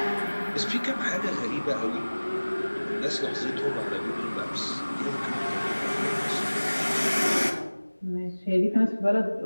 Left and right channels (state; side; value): inverted; both; correlation -1.00